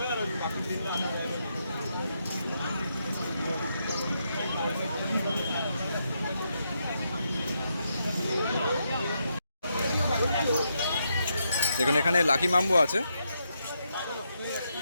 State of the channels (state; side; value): inverted; both; correlation -0.81